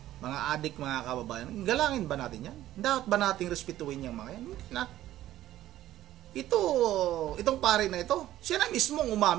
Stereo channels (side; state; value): left; quieter; 13.7 dB